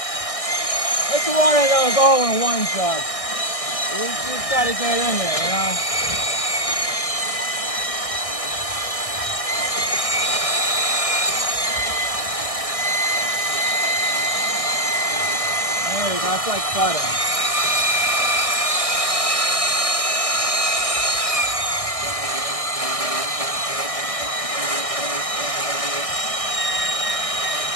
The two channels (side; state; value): right; late; 1.6 ms